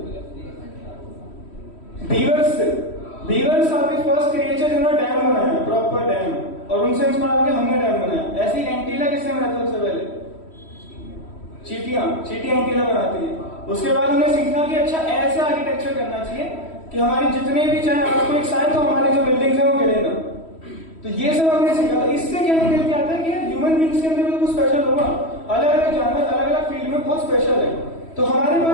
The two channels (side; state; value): right; late; 3.1 ms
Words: बीवर्स से। Beavers are the first creature जिन्होंने डैम बनाया, प्रॉपर डैम, और उनसे इंस्पायर होकर हमने डैम बनाया। ऐसी एंटीला किसने बनाया सबसे पहले? चींटियां एंटीला बनाती है। उसके बाद हमने सीखा कि अच्छा ऐसा आर्किटेक्चर करना चाहिए कि हमारे जितने भी चाहे आपको एक साइड तो हमारी जो बिल्डिंग्स है वो गिरे ना। तो ये सब हमने सीखा था। इससे क्या निकल के आता है कि ह्यूमन बींग्स के अंदर भी तो कुछ स्पेशल होगा। अलग अलग जानवर अलग अलग फील्ड में बहुत स्पेशल है, तो हमारे